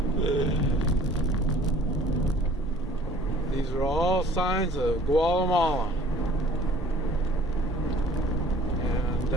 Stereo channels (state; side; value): normal; both; correlation 0.52